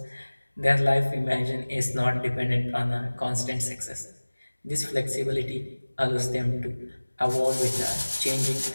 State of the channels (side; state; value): both; inverted; correlation -1.00